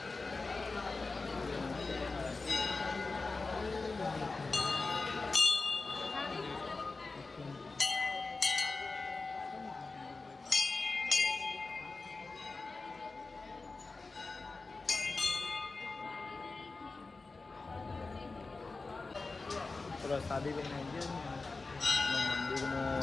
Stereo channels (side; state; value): right; quieter; 3.8 dB